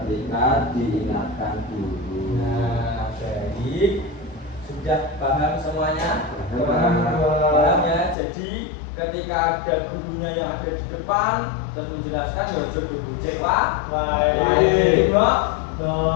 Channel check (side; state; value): right; drops out; at 8.2 s